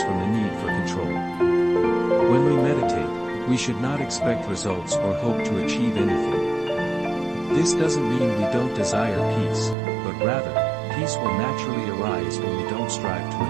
from the need for control. When we meditate, we should not expect results or hope to achieve anything. This doesn't mean we don't desire peace, but rather, peace will naturally arise when we don't strive to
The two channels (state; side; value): drops out; left; at 9.8 s